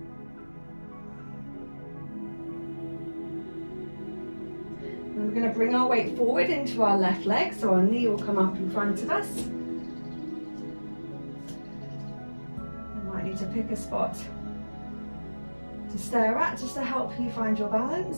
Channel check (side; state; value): both; inverted; correlation -1.00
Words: And we're going to bring our weight forward into our left leg, so our knee will come up in front of us. You might need to pick a spot to stare at just to help you find your